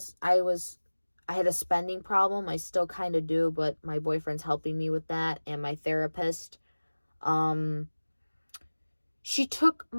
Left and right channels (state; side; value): inverted; both; correlation -1.00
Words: I had a spending problem. I still kind of do, but my boyfriend's helping me with that and my therapist. She took